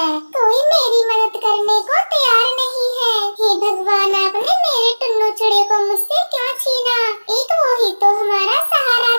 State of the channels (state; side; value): inverted; both; correlation -1.00